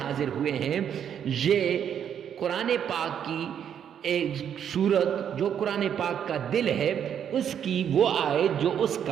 حاضر ہوئے ہیں، یہ قرآن پاک کی ایک سورت جو قرآن پاک کا دل ہے، اس کی وہ آیت جو اس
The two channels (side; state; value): left; quieter; 8.8 dB